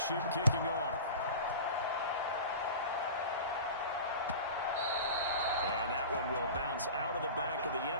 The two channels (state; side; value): inverted; both; correlation -0.34